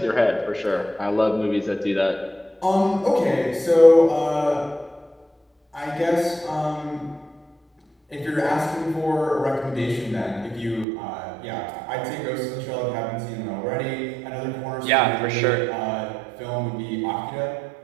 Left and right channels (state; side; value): drops out; left; at 10.9 s